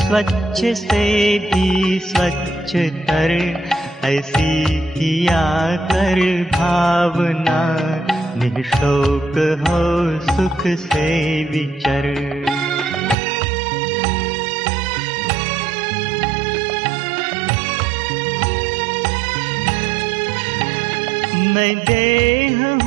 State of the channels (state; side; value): drops out; left; at 13.2 s